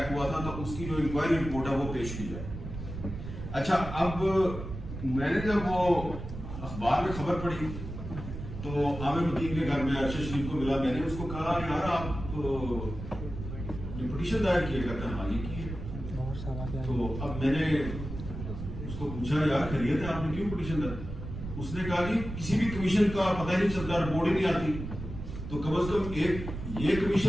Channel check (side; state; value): right; noise; rumble, 8 dB below the sound